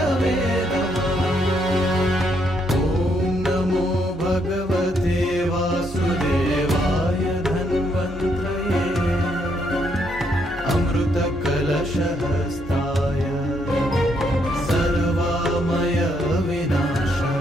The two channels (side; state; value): both; normal; correlation 0.74